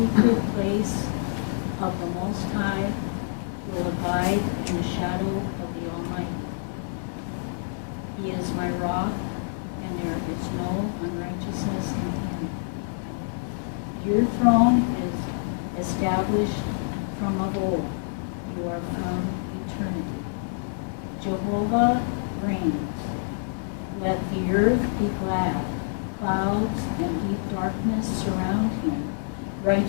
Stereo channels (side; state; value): right; silent; 60 dB below the other